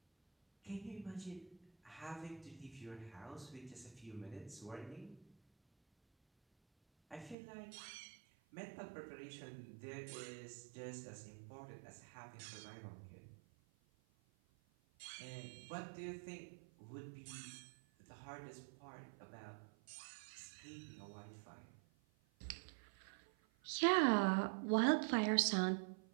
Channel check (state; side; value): drops out; left; at 7.4 s